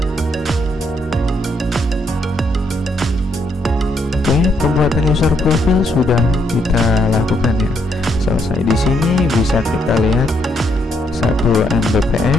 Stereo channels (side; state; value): both; normal; correlation 0.75